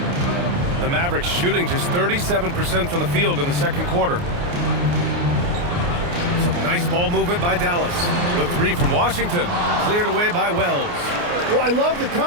The Mavericks shooting just 37% from the field in the second quarter. Some nice ball movement by Dallas. The 3 from Washington, cleared away by Wells. Well, I love the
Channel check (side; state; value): left; late; 29 ms